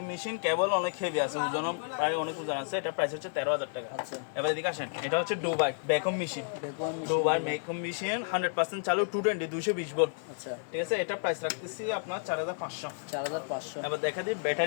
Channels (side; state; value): right; silent; digital silence